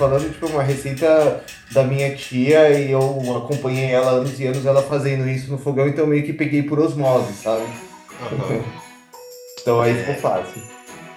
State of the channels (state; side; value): identical; both; correlation 1.00